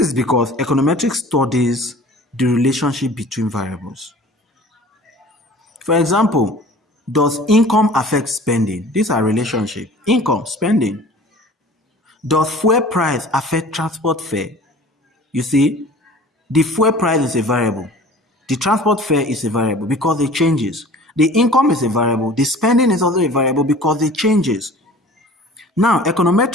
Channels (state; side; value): normal; both; correlation 0.45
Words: because econometrics studies the relationship between variables. For example, does income affect spending? These are relationships. Income, spending. Does fuel price affect transport fare? You see, the fuel price is a variable. The transport fare is a variable because it changes. The income is a variable. The spending is also a variable because it changes. Now,